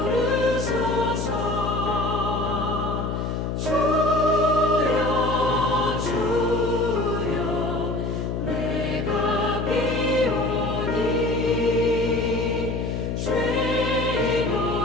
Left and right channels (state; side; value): noise; left; hum, 2 dB below the sound